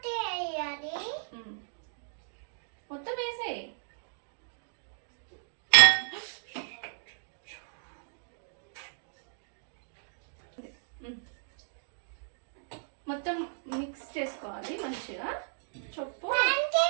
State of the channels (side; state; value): left; silent; digital silence